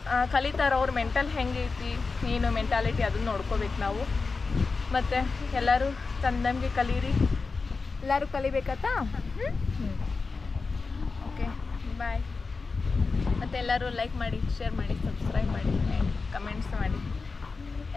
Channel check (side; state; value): right; quieter; 4.3 dB